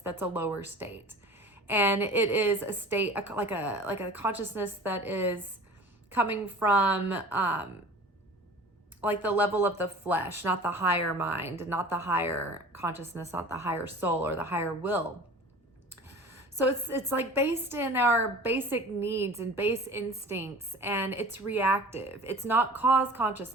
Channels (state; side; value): normal; both; correlation 0.41